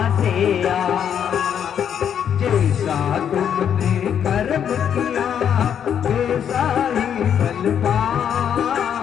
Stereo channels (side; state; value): right; quieter; 8.6 dB